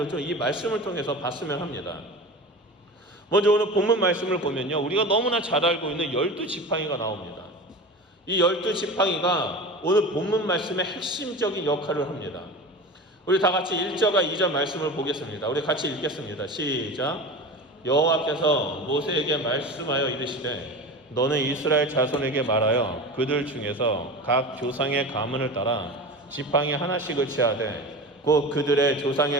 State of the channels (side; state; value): both; normal; correlation 0.31